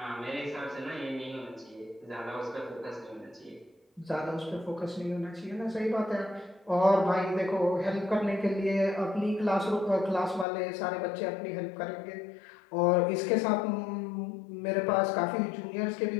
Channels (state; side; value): drops out; right; at 10.5 s